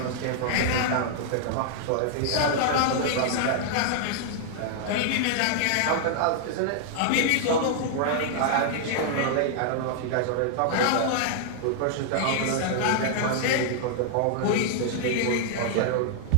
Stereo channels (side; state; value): both; different; correlation -0.01